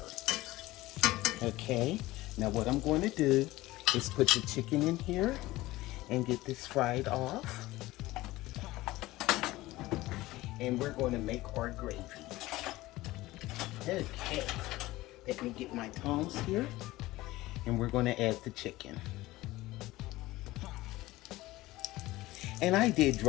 Okay, now what I'm going to do is put the chicken in here and get this fried off. And we're going to make our gravy. Okay, let me get my tongs here, and we're going to add the chicken. And I did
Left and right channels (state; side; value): quieter; right; 18.2 dB